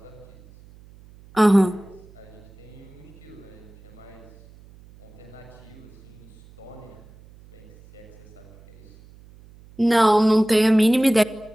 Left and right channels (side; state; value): right; noise; hum, 24 dB below the sound